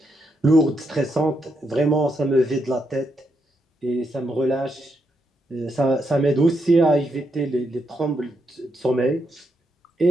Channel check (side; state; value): both; normal; correlation 0.80